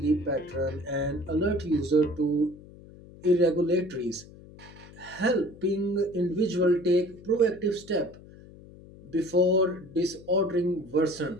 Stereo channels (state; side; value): noise; left; hum, 20 dB below the sound